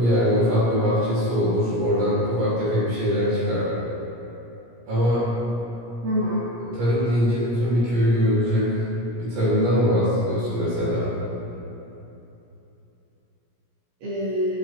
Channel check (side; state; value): left; late; 17 ms